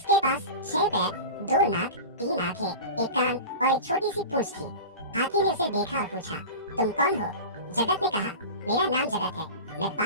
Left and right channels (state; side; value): inverted; both; correlation -0.31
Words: पास 6 पैर, 2 नाक, 3 आंखें, 1 कान और एक छोटी सी पूंछ थी। हाथी ने उसे देखा और पूछा, तुम कौन हो? जगत ने कहा, मेरा नाम जगत है, मैं